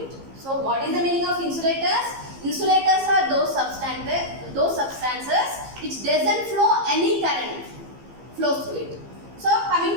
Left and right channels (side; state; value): left; late; 15 ms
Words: it. So what is the meaning of insulators? Insulators are those substances which doesn't flow any current flows through it. So coming